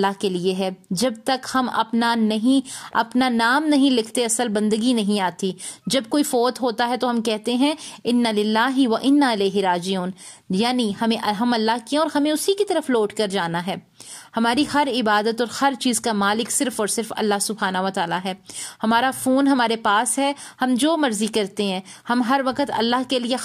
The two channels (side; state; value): both; identical; correlation 1.00